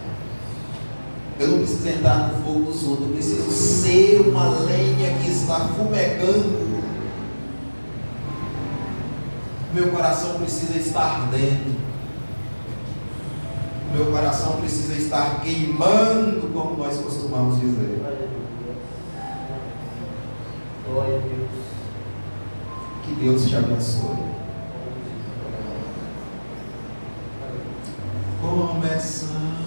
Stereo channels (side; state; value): both; inverted; correlation -1.00